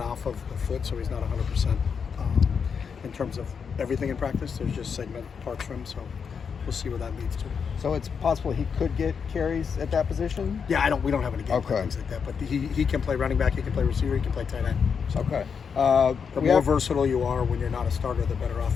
of the foot, so he's not 100% in terms of everything in practice. There's just segment parts for him, so we'll see what that leads to. So it's possible he could get carries at that position? Yeah, we don't have any game plan things like that, but he can play running back, he can play receiver, he can play tight end. So okay. The more versatile you are when you're not a starter, the better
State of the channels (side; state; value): right; quieter; 6.3 dB